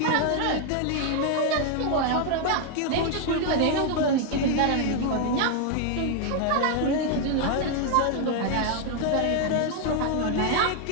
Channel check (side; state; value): both; different; correlation 0.00